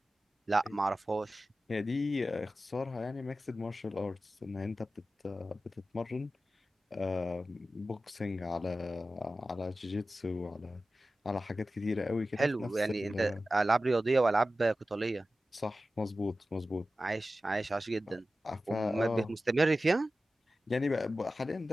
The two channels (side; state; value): both; normal; correlation 0.94